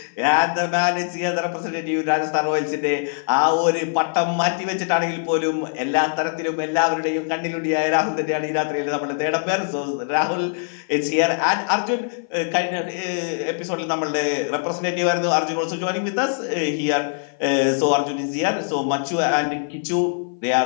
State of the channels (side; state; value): right; silent; 56 dB below the other